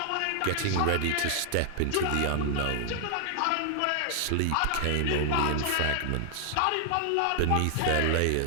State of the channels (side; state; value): both; different; correlation 0.00